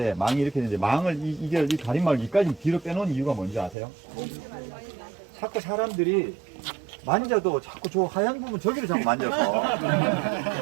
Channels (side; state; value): left; drops out; at 3.8 s